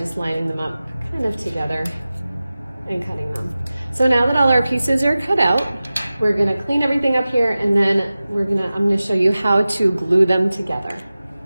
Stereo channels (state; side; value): inverted; both; correlation -0.96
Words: lining them up kind of together and cutting them. So now that all our pieces are cut out, we're gonna clean everything up here, and then I'm gonna show you how to glue them together.